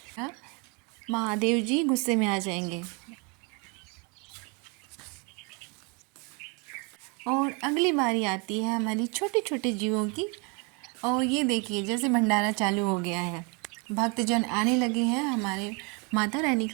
हाँ? महादेव जी गुस्से में आ जाएंगे। और अगली बारी आती है हमारी छोटे छोटे जीवों की। और ये देखिए जैसे भंडारा चालू हो गया है, भक्तजन आने लगे हैं हमारे माता रानी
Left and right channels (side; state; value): left; quieter; 32.4 dB